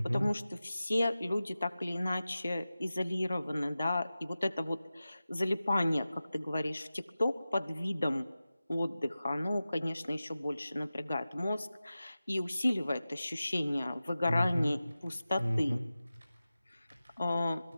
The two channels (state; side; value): inverted; both; correlation -0.95